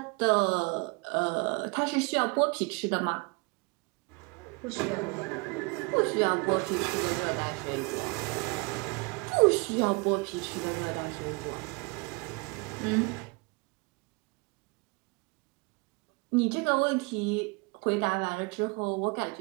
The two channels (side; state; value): left; quieter; 28.8 dB